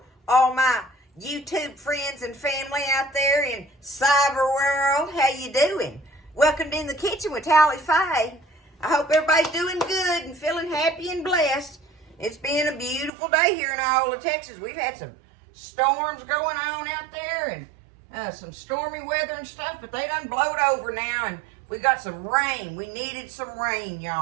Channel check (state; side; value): drops out; left; at 13.1 s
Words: all my YouTube friends and family out there in cyber world. How you doing? Welcome to In the Kitchen with Tally Faye. I hope everybody's doing good and feeling happy and blessed. It's been a beautiful day here in Iola, Texas. We've had some storms going on out there and some stormy weather and stuff, but they done blowed over now, and we got some rain. We needed some rain,